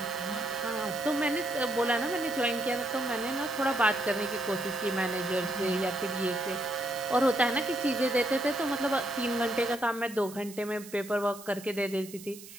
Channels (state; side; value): noise; right; hiss, 16 dB below the sound